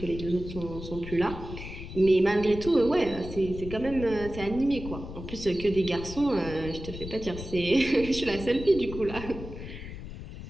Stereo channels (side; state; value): left; noise; rumble, 10 dB below the sound